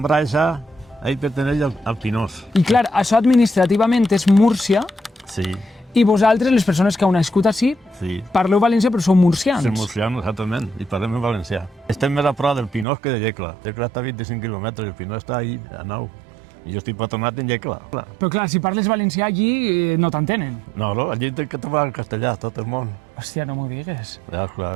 ahí perteneix al Pinós. I clar, això administrativament és Múrcia Sí, i vosaltres, les persones que heu nascut així, sí. parleu valencià però sou murcians. Som murcians, exactament, i parlem en valencià. Estem més a prop del Pinós que de Llecla. Llecla està a 25 quilòmetres, el Pinós està ahí, a 9. I jo estic patronat en Llecla. Però clar, si parles valencià allí no t'entenen. No, allí té que trobar el castellà, tot el món. Hòstia, no m'ho digues. Ja,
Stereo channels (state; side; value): drops out; left; at 12.9 s